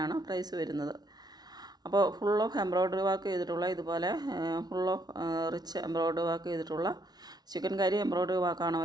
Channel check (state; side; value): late; left; 0.19 ms